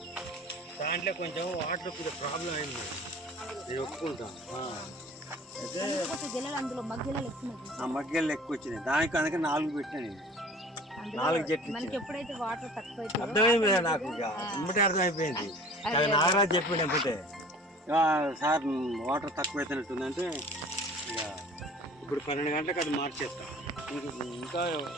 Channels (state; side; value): normal; both; correlation 0.46